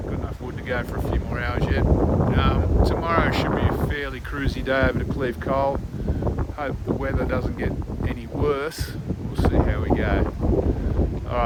enough wood to go for a few more hours yet. Tomorrow should be a fairly cruisy day over to Cleve Cole. Hope the weather doesn't get any worse. We'll see how we go.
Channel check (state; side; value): identical; both; correlation 1.00